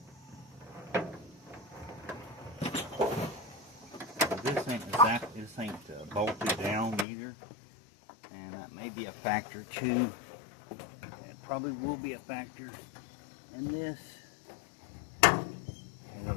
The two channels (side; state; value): right; drops out; at 7.1 s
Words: This ain't bolted down either, and that may be a factor too. It probably will be a factor in this. So